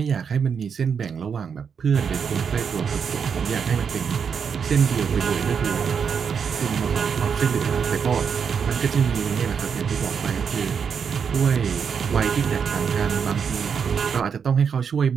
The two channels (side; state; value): left; quieter; 6.7 dB